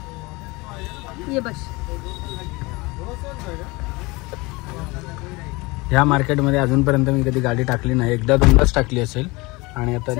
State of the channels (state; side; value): quieter; right; 24.1 dB